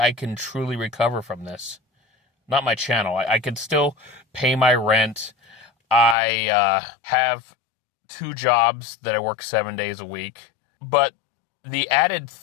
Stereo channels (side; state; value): right; drops out; at 6.2 s